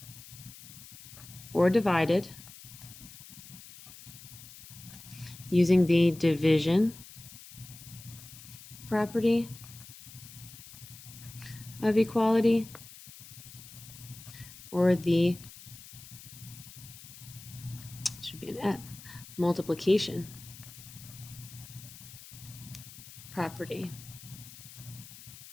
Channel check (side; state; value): left; noise; hiss, 17 dB below the sound